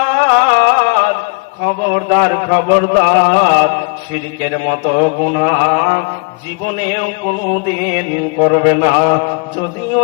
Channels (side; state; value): right; quieter; 34.9 dB